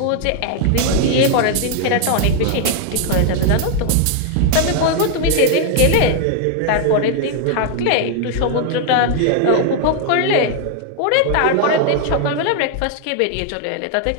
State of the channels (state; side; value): different; both; correlation 0.00